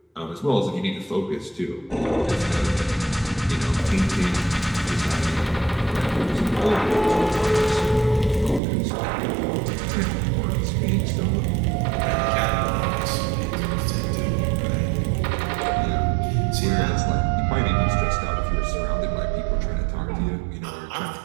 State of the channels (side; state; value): left; drops out; at 8.6 s